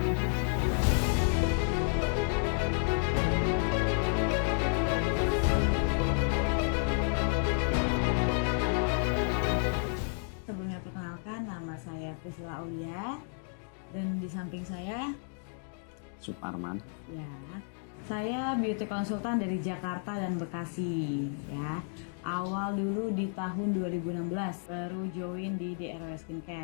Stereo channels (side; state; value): right; silent; 57 dB below the other